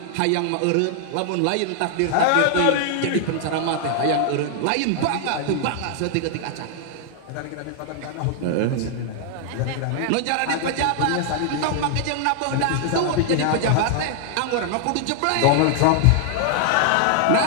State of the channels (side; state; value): both; different; correlation 0.00